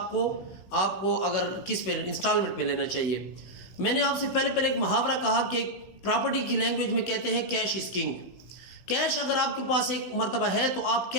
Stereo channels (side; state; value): right; late; 16 ms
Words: کو اگر کس پہ انسٹالمنٹ پہ لینا چاہیے. میں نے آپ سے پہلے ایک محاورہ کہا کہ پراپرٹی کی لینگویج میں کہتے ہیں کیش از کنگ. کیش اگر آپ کے پاس ایک مرتبہ ہے تو آپ